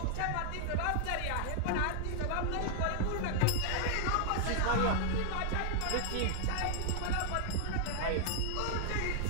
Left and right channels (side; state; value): both; different; correlation -0.01